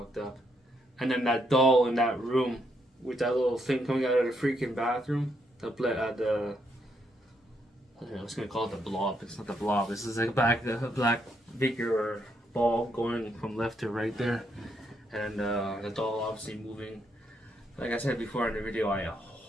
up. And then that doll in that room with that little thing coming out of the freaking bathroom. I was gonna call it the blob. It's not the blob. This is like a black figure or ball going from left to right there, and the doll obviously moving. Like I said before in the video, I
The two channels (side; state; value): both; normal; correlation 0.76